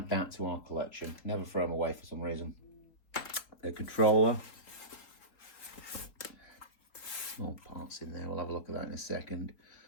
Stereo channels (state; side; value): late; right; 3.8 ms